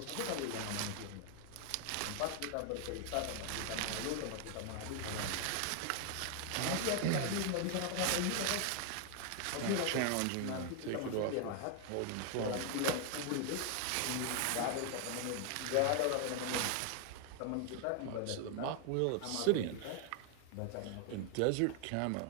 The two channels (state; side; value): different; both; correlation 0.00